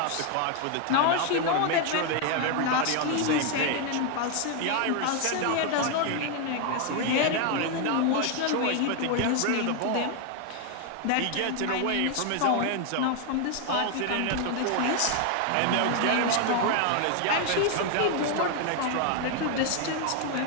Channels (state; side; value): different; both; correlation 0.01